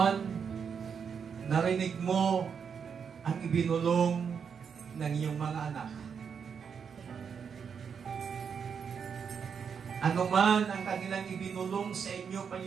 narinig mo ang ibinulong ng iyong mga anak. Ano man ang kanilang ibinulong sa inyo,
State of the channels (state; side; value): quieter; left; 6.7 dB